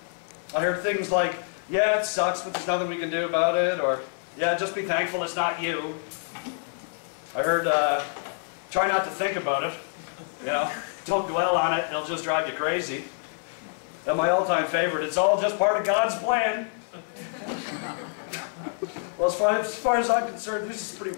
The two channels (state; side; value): silent; right; digital silence